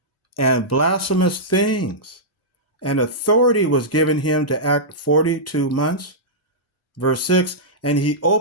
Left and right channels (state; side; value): normal; both; correlation -0.13